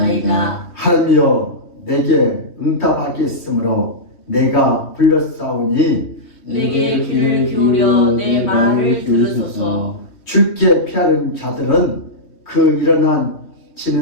하나님이여 내게 응답하겠으므로 내가 불렀사오니 내게 귀를 기울여 내 말을 들으소서. 주께 피하는 자들은 그 일어난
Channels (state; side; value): late; right; 3.2 ms